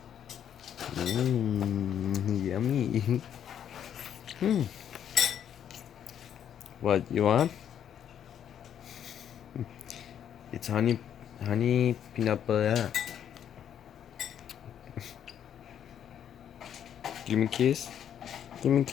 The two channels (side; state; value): right; quieter; 9.4 dB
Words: Yummy. What you want? It's honey peanut butter. Give me a kiss. Give me a